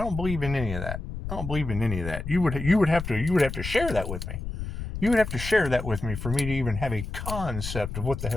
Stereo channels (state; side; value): noise; left; rumble, 7 dB below the sound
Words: believe in any of that. I don't believe in any of that. You would have to share that with me. You would have to share that with me for me to even have a concept of what the